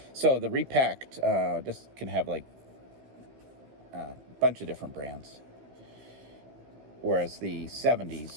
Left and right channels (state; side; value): late; left; 15 ms